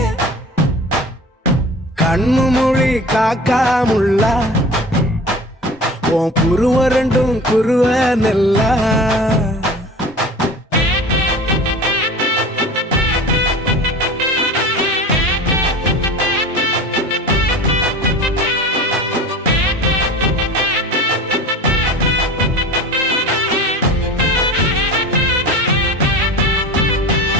கண்ணு மொழி காக்காமுள்ள உன் குருவ ரெண்டும் குருவ நெல்லா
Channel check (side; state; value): both; normal; correlation 0.37